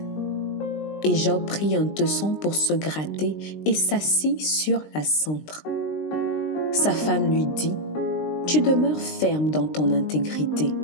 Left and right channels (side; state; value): right; late; 20 ms